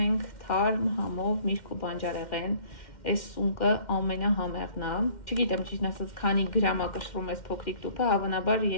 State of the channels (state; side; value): late; right; 2.1 ms